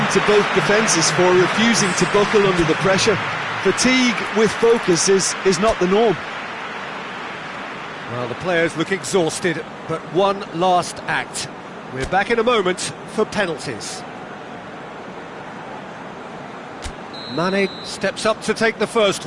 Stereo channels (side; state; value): both; identical; correlation 1.00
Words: to both defences for refusing to buckle under the pressure. Fatigue with focus is not the norm. Well, the players look exhausted, but one last act. We're back in a moment for penalties. Mane steps up to take the first